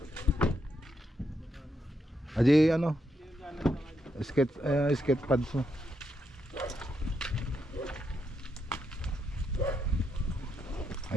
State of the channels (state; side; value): normal; both; correlation 0.80